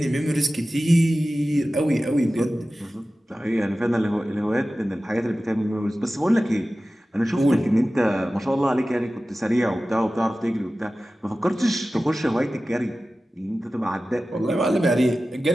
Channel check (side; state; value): both; normal; correlation 0.95